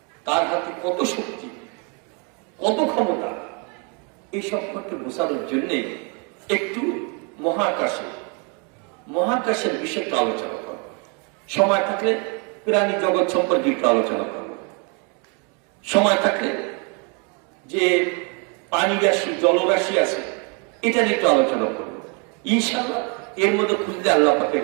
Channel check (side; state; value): left; quieter; 34.8 dB